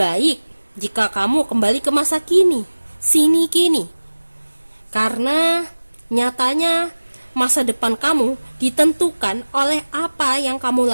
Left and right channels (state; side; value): inverted; both; correlation -1.00